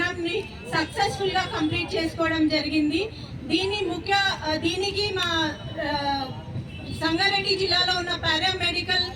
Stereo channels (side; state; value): both; identical; correlation 1.00